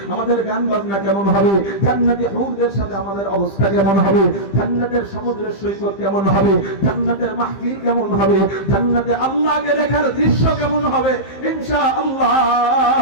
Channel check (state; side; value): late; right; 15 ms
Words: আমাদের গান বাজনা কেমন হবে? জান্নাতি হুরদের সাথে আমাদের অবস্থা কেমন হবে? জান্নাতের সমুদ্রের সৈকত কেমন হবে? জান্নাতের মাহফিল কেমন হবে? জান্নাতে আল্লাহকে দেখার দৃশ্য কেমন হবে? ইনশাআল্লাহ